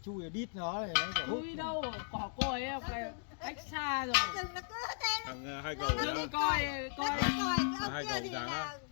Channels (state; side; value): silent; right; digital silence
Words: chui đít nó này nó phải hút. Chui đâu, cỏ còi ấy, cái cách xa rồi. Rừng nó cứ thế nó Thằng hai cậu Dừng đó. coi còi cái ông Hai kia cậu thì dáng là á.